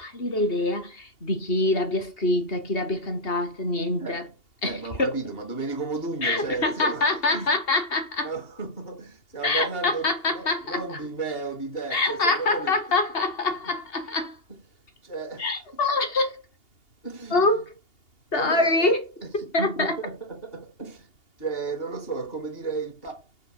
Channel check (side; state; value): right; late; 2.8 ms